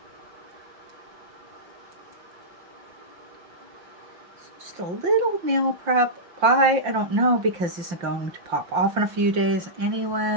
Just a little nail prep. Why? I don't know, because this is going to pop off in a few days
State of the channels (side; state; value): left; late; 5.7 ms